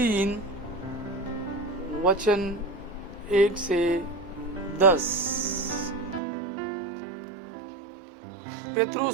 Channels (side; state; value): left; drops out; at 6.2 s